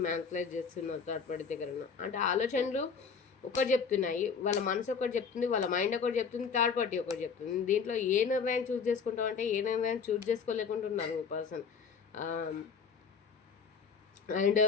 మ్యానిపులేట్ చేస్తున్నారు. థర్డ్ పార్టీ దగ్గర ఉన్న అంటే ఆలోచనలు ఒకటి చెప్తున్నాయి, వాళ్ళ మనసు ఒకటి చెప్తుంది, వాళ్ళ మైండ్ ఒకటి చెప్తుంది, థర్డ్ పార్టీ ఒకటి చెప్తుంది. దీంట్లో ఏ నిర్ణయం చూస్ చేసుకుంటాం అంటే ఏ నిర్ణయం చూస్ చేసుకోలేకుంటున్నారు పర్సన్. అండ్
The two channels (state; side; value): quieter; right; 6.0 dB